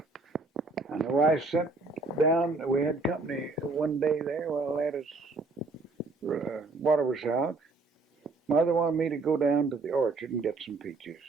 And the wife sent down, we had company one day there while water was out. Mother wanted me to go down to the orchard and get some peaches.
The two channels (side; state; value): left; quieter; 3.6 dB